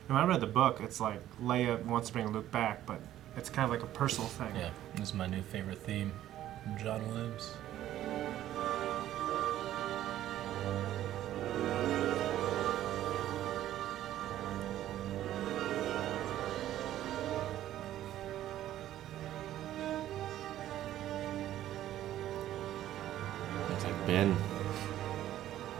When I read the book, it's like Leia wants to bring Luke back, but it's kind of like a personal thing. Yeah, this is my new favorite theme from John Williams. Looks like Ben.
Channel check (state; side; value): quieter; left; 12.9 dB